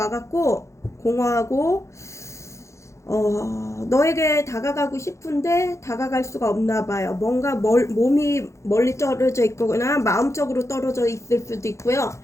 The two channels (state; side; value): late; right; 0.14 ms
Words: 공허하고 너에게 다가가고 싶은데 다가갈 수가 없나 봐요. 뭔가 몸이 멀리 떨어져 있거나 마음적으로 떨어져 있을 수도 있고요.